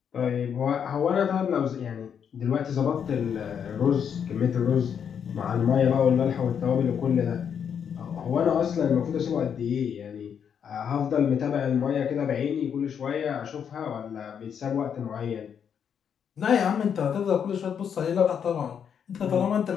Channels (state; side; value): quieter; right; 7.8 dB